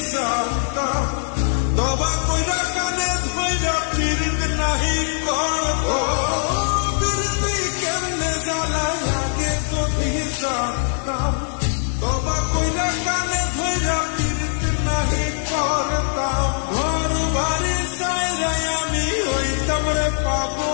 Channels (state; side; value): silent; right; 65 dB below the other